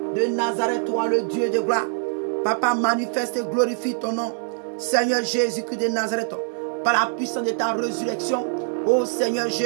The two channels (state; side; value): silent; left; 63 dB below the other